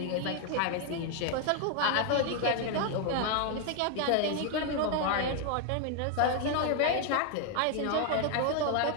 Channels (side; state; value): both; different; correlation 0.00